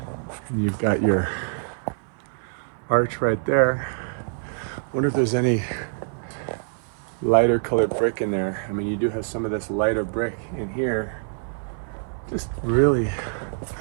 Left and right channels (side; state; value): left; silent; 62 dB below the other